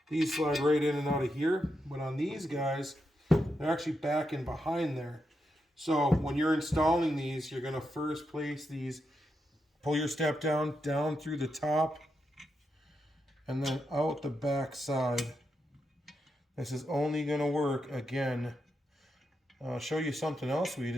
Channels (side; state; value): both; normal; correlation 0.84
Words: these slide right in and out of here. But on these guys, they're actually back and behind there. So when you're installing these, you're going to first place these, pull your step down through the top, and then out the back side. This is only going to work, again, I'll show you something else we